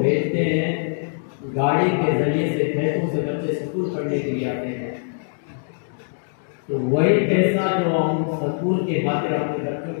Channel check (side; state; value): right; silent; 64 dB below the other